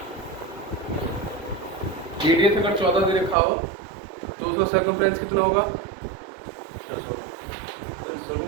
रेडियस अगर 14 दे रखा हो तो उसका सर्कमफ्रेंस कितना होगा?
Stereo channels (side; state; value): left; drops out; at 3.4 s